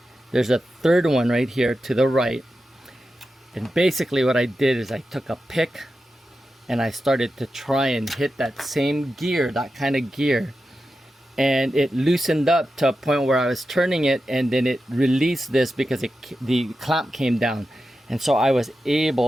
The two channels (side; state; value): both; normal; correlation 0.91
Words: There's a 3rd one right here to the right. And basically what I did is I took a pick and I started to try and hit that same gear, that kind of gear, and it loosened up to a point where I was turning it, and then it released this because the clamp came down, and so I was